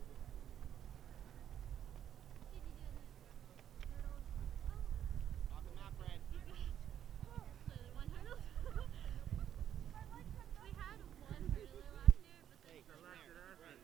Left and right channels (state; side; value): quieter; left; 10.1 dB